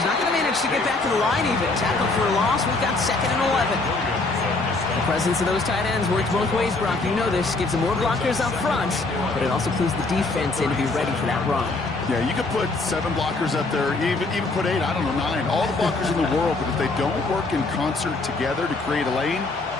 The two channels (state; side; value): quieter; right; 3.4 dB